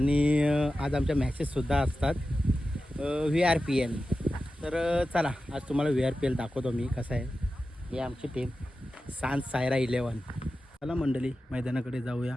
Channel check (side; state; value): both; normal; correlation 0.93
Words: आज आमच्या मॅचेससुद्धा असतात VRPL. तर चला आज तुम्हाला VRPL दाखवतो मी कसं आहे. ही आमची टीम सांज सायरा 11. चला मंडळी मैदानाकडे जाऊया.